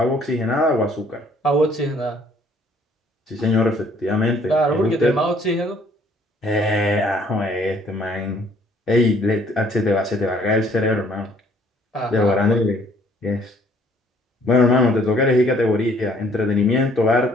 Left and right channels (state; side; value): normal; both; correlation 0.61